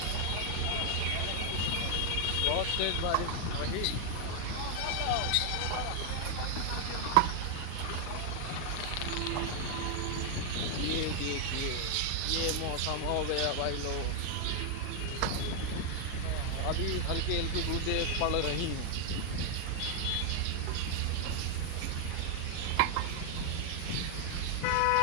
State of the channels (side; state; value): both; different; correlation 0.00